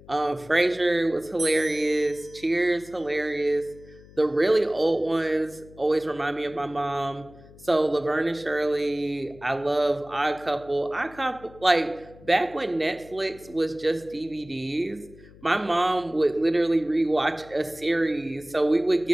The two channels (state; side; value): noise; left; hum, 22 dB below the sound